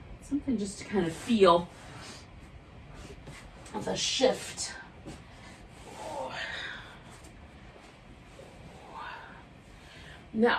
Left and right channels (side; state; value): both; identical; correlation 1.00